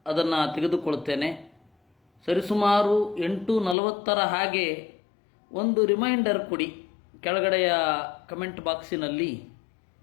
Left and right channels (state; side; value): drops out; right; at 3.8 s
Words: ಅದನ್ನು ತೆಗೆದುಕೊಳ್ತೇನೆ. ಸರಿಸುಮಾರು 8:40 ಹಾಗೆ ಒಂದು ರಿಮೈಂಡರ್ ಕೊಡಿ. ಕೆಳಗಡೆಯ ಕಮೆಂಟ್ ಬಾಕ್ಸಿನಲ್ಲಿ